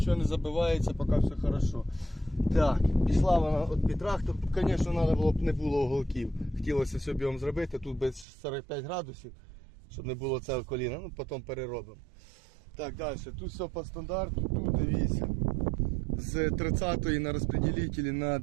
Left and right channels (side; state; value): left; drops out; at 8.2 s